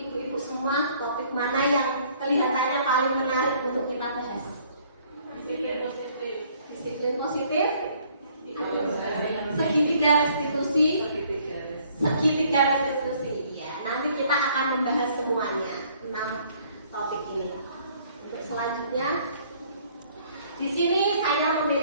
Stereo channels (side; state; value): both; inverted; correlation -0.61